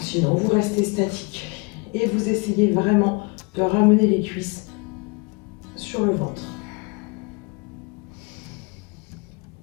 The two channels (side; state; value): right; quieter; 30.1 dB